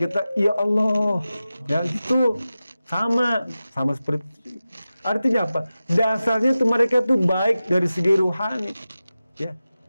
ya Allah ya, itu sama seperti itu. Artinya apa? Dasarnya tuh mereka tuh baik dari segi rohani, ya.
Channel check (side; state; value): both; inverted; correlation -0.94